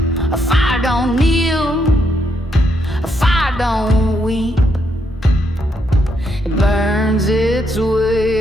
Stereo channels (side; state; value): both; normal; correlation 0.77